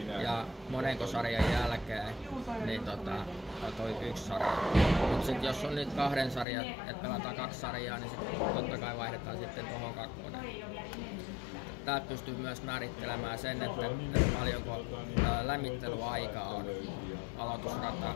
ja monenko sarjan jälkeen, niin toi 1 sarja. Mut sit jos on nyt 2 sarjaa, että pelataan 2 sarjaa, niin sit totta kai vaihdetaan sitten tuohon 2. Täältä pystyy myös määrittelemään sen, että paljonko lämmittelyaikaa on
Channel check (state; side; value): drops out; right; at 6.5 s